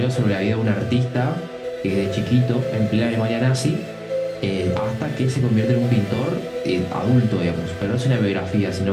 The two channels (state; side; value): identical; both; correlation 1.00